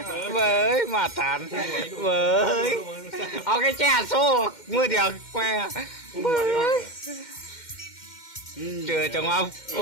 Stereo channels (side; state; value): right; late; 2.1 ms